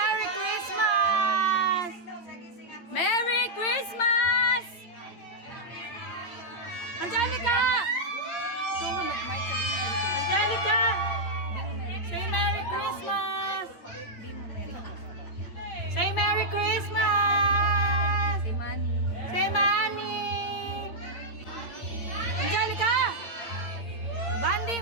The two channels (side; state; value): right; late; 8.9 ms